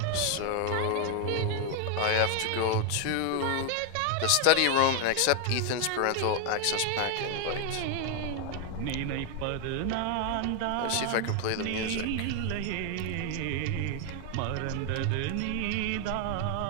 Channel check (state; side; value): different; both; correlation 0.01